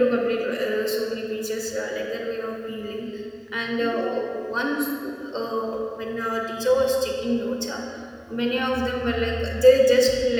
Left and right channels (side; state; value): both; identical; correlation 1.00